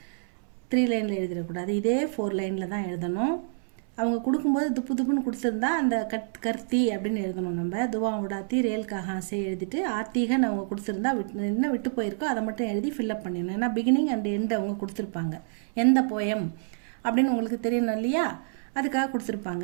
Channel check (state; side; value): silent; left; 60 dB below the other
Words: 3 லைனில் எழுதிடக்கூடாது. இதே 4 லைனில் தான் எழுதணும். அவங்க கொடுக்கும்போது துப்பு துப்புன்னு கொடுத்துருந்தா அந்த கர்த்தி அப்படின்னு எழுதணும். நம்ம துவா உடாத்தி ரேல் கஹாசே எழுதிட்டு ஆத்திகன்னு அவங்க கொடுத்துருந்தா என்ன விட்டு போயிருக்கோ அதை மட்டும் எழுதி ஃபில்அப் பண்ணிடணும். ஏன்னா பிகினிங் அண்ட் எண்ட் அவங்க கொடுத்துருப்பாங்க. எந்த போயம் அப்படின்னு உங்களுக்கு தெரியணும் இல்லையா, அதுக்காக கொடுத்துருப்பாங்க.